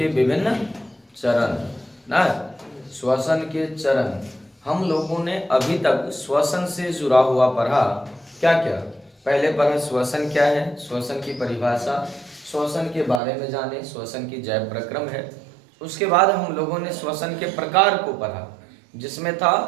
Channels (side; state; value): left; drops out; at 13.2 s